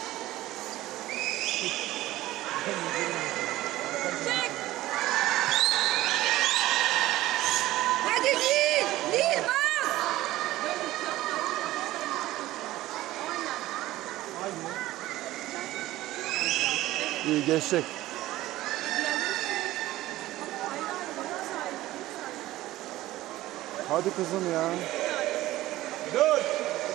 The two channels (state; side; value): quieter; left; 16.2 dB